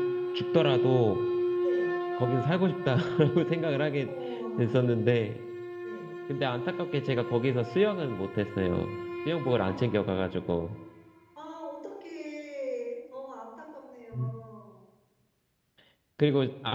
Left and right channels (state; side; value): identical; both; correlation 1.00